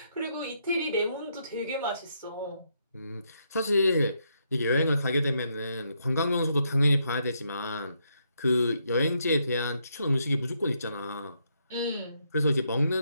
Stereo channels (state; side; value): inverted; both; correlation -0.77